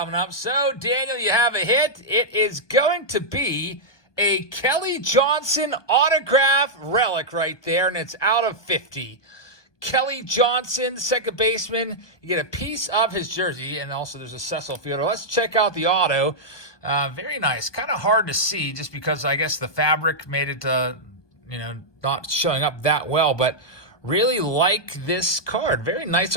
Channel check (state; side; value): late; right; 1.2 ms